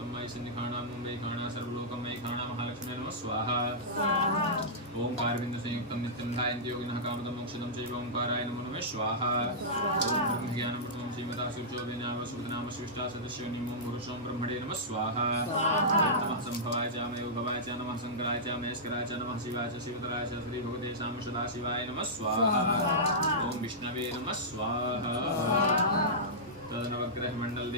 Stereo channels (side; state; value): both; normal; correlation -0.14